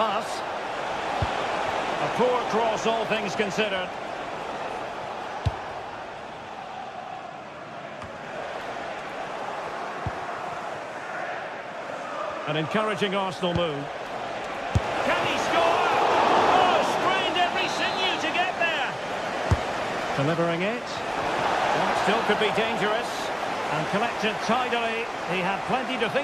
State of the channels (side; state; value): both; identical; correlation 1.00